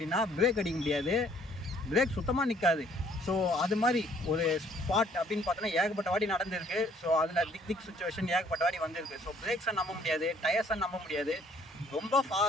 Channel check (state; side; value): normal; both; correlation 0.61